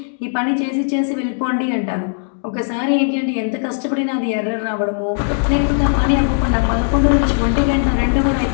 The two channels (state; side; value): silent; right; digital silence